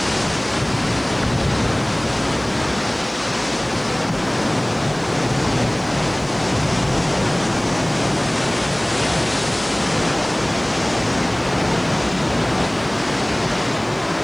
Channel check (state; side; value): noise; right; hiss, 29 dB below the sound